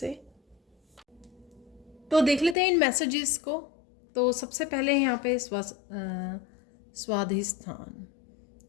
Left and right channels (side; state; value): right; drops out; at 2.6 s